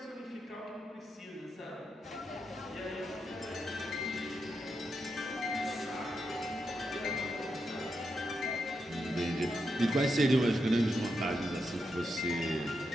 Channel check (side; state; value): both; normal; correlation 0.84